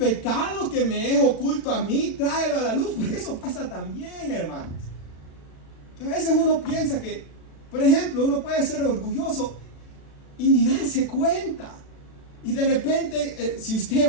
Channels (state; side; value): late; right; 36 ms